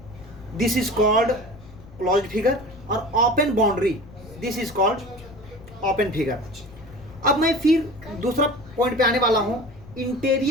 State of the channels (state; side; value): noise; left; rumble, 20 dB below the sound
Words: this is called closed figure, और open boundary this is called open figure. अब मैं फिर दूसरा पॉइंट पे आने वाला हूं,